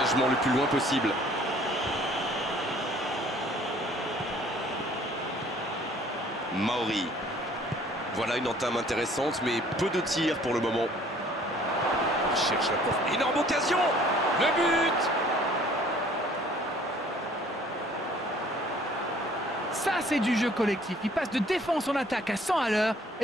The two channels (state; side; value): normal; both; correlation 0.56